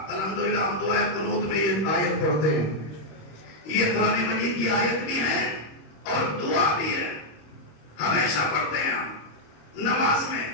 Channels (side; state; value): right; late; 26 ms